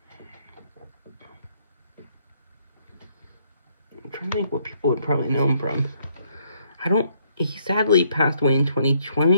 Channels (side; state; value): both; inverted; correlation -0.70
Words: I'm trying to think what people would probably know him from. He sadly passed away in